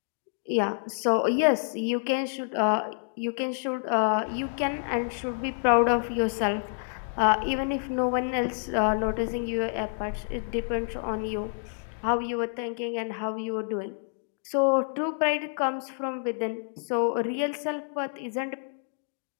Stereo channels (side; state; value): right; silent; digital silence